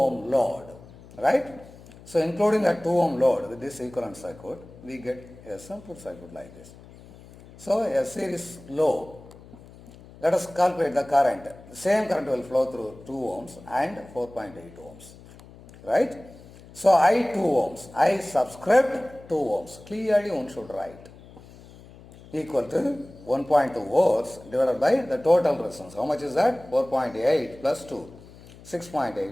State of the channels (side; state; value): left; noise; hum, 20 dB below the sound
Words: load. Right? So including the 2 ohm load with this equivalent circuit, we get a simple circuit like this. So a series load. Let us calculate the current. The same current will flow through 2 ohms and 4.8 ohms. Right? So I 2 ohms. I subscript 2 ohms. Clearly one should write. Equal to 1.2 volts divided by the total resistance. How much is that? 4.8 plus 2.